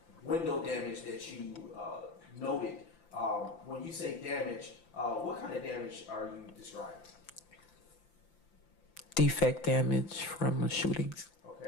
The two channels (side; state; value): right; late; 5.8 ms